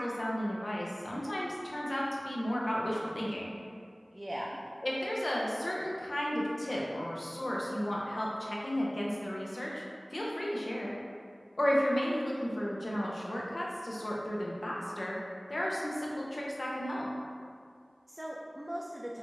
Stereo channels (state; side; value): normal; both; correlation 0.98